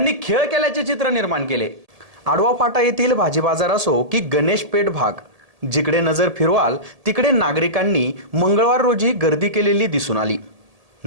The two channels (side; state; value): left; late; 1.7 ms